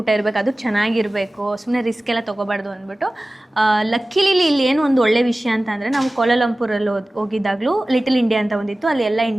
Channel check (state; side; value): normal; both; correlation 0.97